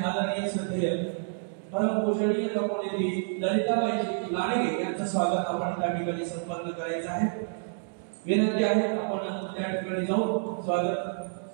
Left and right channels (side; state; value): left; silent; digital silence